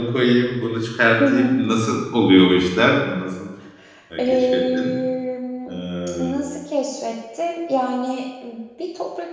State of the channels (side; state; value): both; identical; correlation 1.00